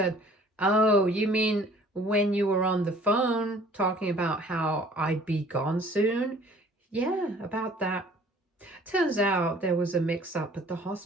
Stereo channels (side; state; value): both; normal; correlation 0.53